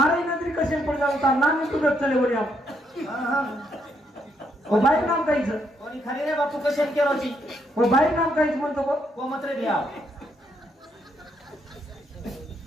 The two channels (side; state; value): both; normal; correlation 0.75